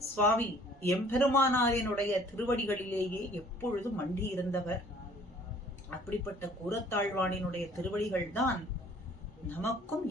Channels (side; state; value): both; normal; correlation 0.55